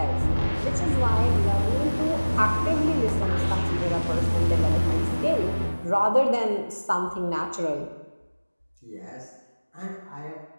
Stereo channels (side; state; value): both; inverted; correlation -1.00